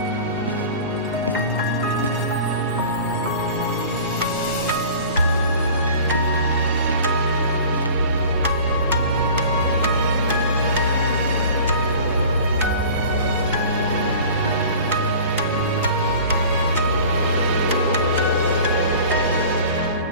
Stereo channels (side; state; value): both; inverted; correlation -0.42